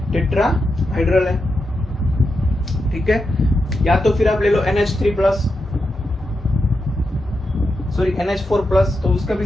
टेट्राहाइड्रल है। ठीक है। या तो फिर आप ले लो NH3+, सॉरी NH4+, तो उसका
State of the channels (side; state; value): both; normal; correlation 0.87